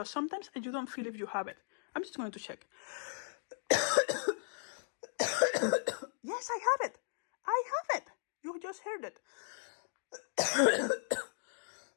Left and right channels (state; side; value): silent; right; digital silence